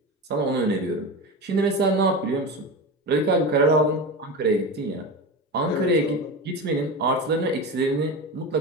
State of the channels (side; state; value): both; normal; correlation 0.24